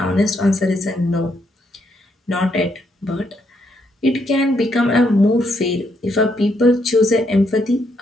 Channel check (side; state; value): both; normal; correlation 0.76